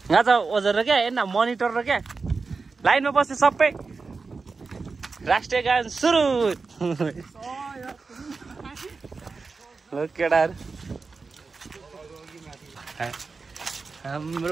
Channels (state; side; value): quieter; left; 4.4 dB